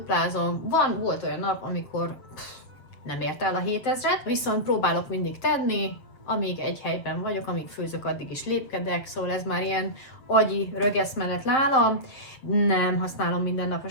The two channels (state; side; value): late; right; 7.5 ms